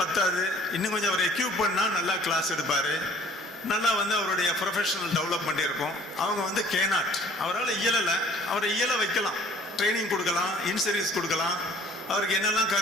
பத்தாது, இன்னும் கொஞ்சம் அவர் எக்யூப் பண்ணால் நல்லா கிளாஸ் எடுப்பார், நல்லா அவருடைய ப்ரொஃபஷனல் டெவலப்மெண்ட் இருக்கும். அவங்க கேனாட், அவரால் இயலலை, அவரை இயல வைக்கலாம், ட்ரைனிங் கொடுக்கலாம், இன்சர்வீஸ் கொடுக்கலாம், அவருக்கு என்னெல்லாம்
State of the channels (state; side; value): normal; both; correlation 0.54